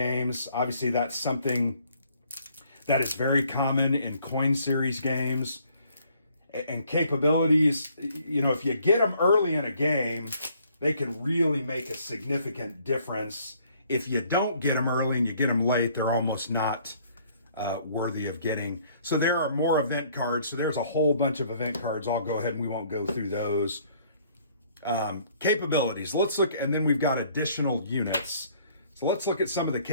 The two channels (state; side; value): inverted; both; correlation -0.62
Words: Obviously, that's something that is very common in coin series games. And capabilities, you know, if you get them early in a game, they can really make a significant difference. If you don't get them early and you get them late, they're almost not worthy of getting. So there are more event cards. So there's a whole bunch of event cards. I'll go ahead and we won't go through those. Capabilities. Let's look, and then we've got additional units. So let's look at some of the